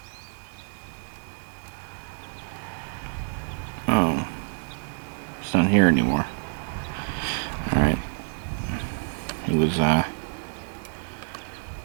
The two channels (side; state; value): left; silent; 60 dB below the other